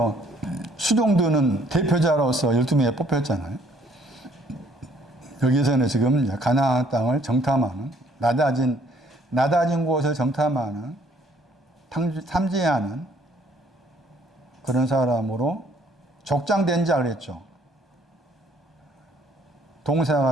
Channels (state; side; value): normal; both; correlation 0.62